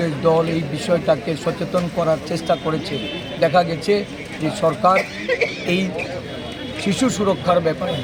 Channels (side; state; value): both; identical; correlation 1.00